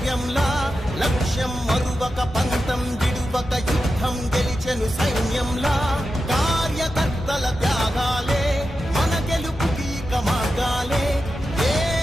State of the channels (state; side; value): normal; both; correlation 0.90